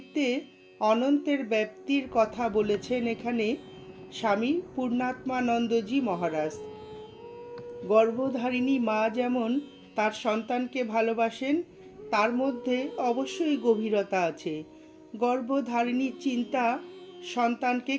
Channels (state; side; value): identical; both; correlation 1.00